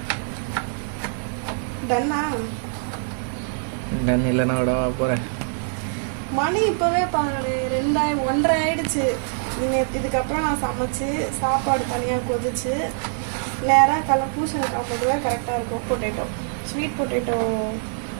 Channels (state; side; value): silent; left; digital silence